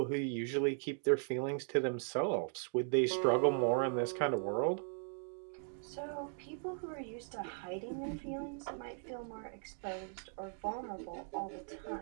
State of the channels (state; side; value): silent; left; 52 dB below the other